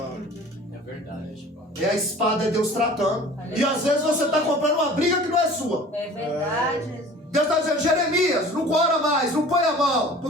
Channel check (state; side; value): normal; both; correlation 0.45